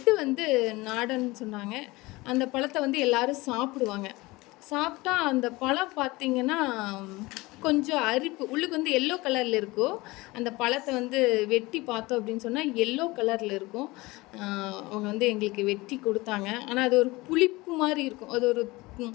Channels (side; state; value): right; quieter; 21.8 dB